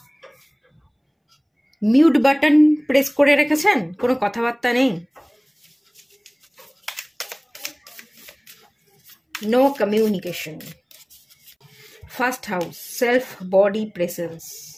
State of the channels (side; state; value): both; identical; correlation 1.00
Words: মিউট বাটন প্রেস করে রেখেছেন, কোনো কথাবার্তা নেই, no communication. First house, self body presence,